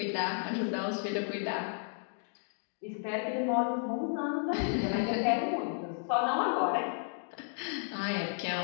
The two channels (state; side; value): silent; right; 56 dB below the other